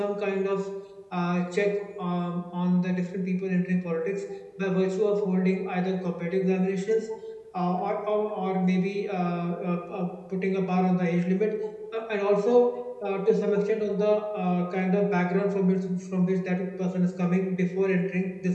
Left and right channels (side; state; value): both; identical; correlation 1.00